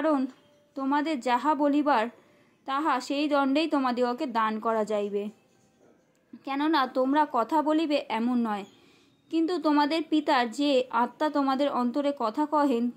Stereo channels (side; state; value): both; identical; correlation 1.00